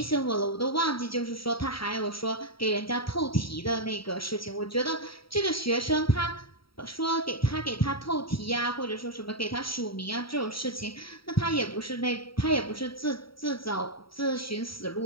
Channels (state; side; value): late; right; 0.75 ms